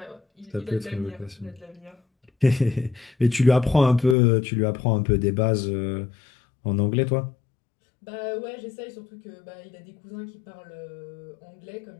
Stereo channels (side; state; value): right; drops out; at 4.2 s